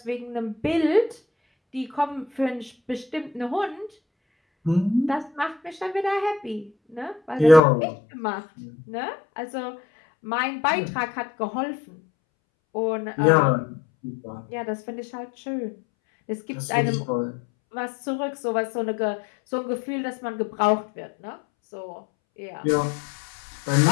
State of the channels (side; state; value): right; drops out; at 7.6 s